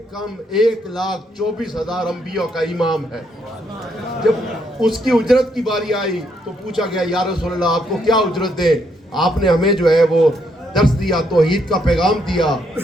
انبیاء کا امام ہے. جب اس کی اجرت کی باری آئی تو پوچھا گیا یا رسول اللہ آپ کو کیا اجرت دے؟ آپ نے ہمیں جو ہے وہ درس دیا, توحید کا پیغام دیا.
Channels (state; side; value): normal; both; correlation 0.74